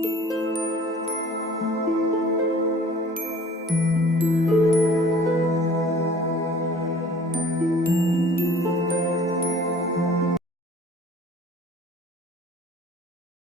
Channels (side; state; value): both; normal; correlation 0.50